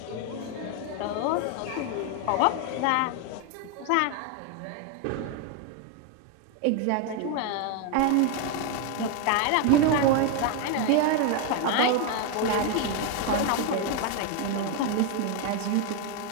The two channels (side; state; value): both; different; correlation 0.01